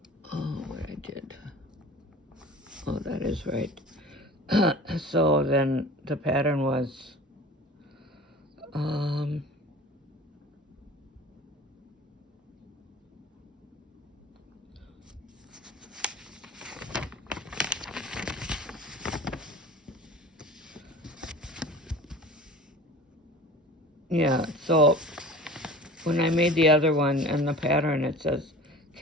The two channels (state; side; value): normal; both; correlation 0.41